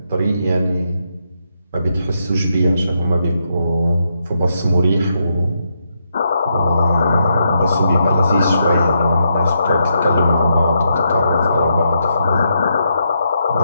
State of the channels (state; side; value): inverted; both; correlation -0.80